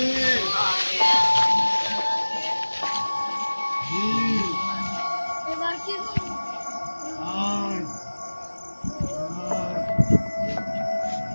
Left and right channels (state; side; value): inverted; both; correlation -1.00